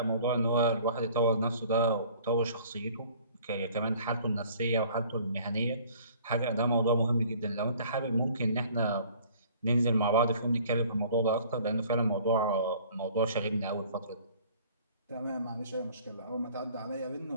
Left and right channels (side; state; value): both; inverted; correlation -0.53